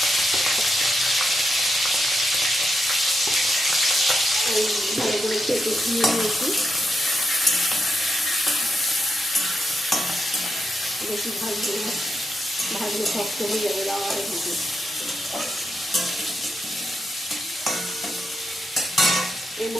ভালো করে কেটে ধুয়ে নিয়েছি। বেশি ভাজলে শক্ত হয়ে যাবে, রাওয়াটা ভেজে। এর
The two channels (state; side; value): normal; both; correlation 0.84